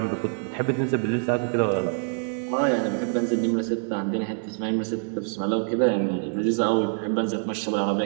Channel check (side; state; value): left; silent; 60 dB below the other